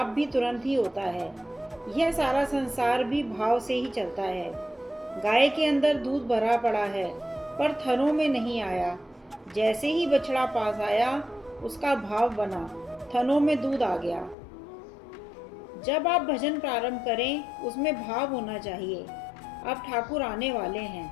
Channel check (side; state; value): right; drops out; at 14.4 s